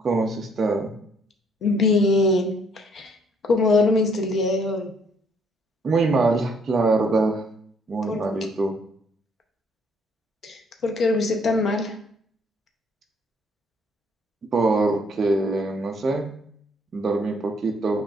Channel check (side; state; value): both; normal; correlation 0.66